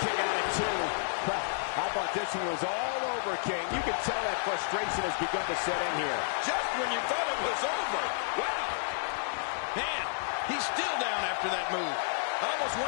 kick out at 2. How about this one was all over, King? You can tell that frustration has begun to set in here. Just when you thought it was over. Wow. Man, he's still down after that move. I almost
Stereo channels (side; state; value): right; silent; digital silence